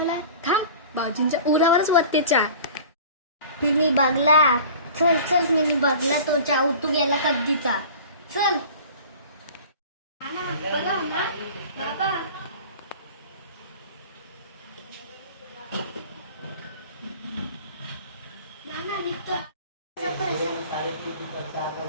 थांब भाऊजींच्या उरावरच वरते चहा. तिने बघला. चल चल मी बघला तो चहा उतू गेला कधीचा. चल.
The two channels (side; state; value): both; inverted; correlation -0.41